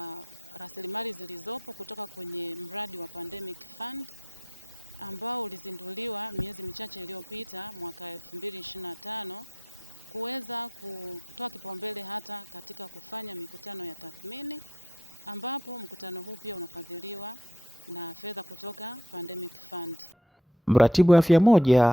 rasilimali zilizopo kutoka kwenye mradi wa Pandemic Fund ambao ulizinduliwa miezi michache iliyopita mwaka 2025 kuweza kutoa kipaumbele hata katika kufanya mikutano ya tathmini, ambapo mkutano huu pia unafadhiliwa na fedha kutoka Pandemic Fund. Mratibu wa afya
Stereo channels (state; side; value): normal; both; correlation 0.71